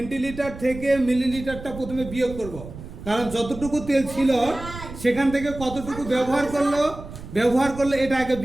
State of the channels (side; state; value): right; noise; rumble, 13 dB below the sound